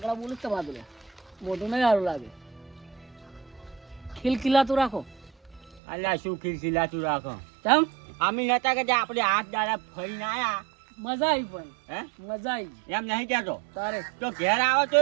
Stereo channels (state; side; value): drops out; left; at 5.8 s